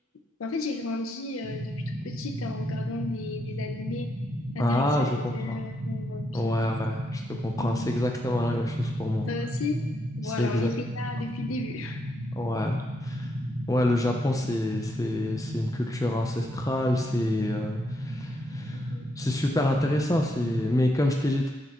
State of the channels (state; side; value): normal; both; correlation 0.79